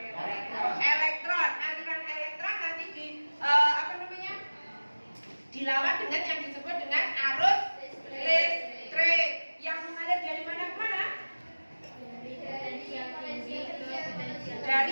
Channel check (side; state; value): both; inverted; correlation -1.00